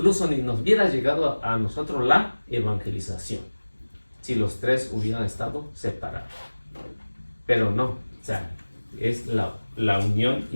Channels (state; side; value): inverted; both; correlation -1.00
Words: ni nos hubiera llegado a nosotros la evangelización si los tres hubieran estado separados. Pero no, o sea, es la unión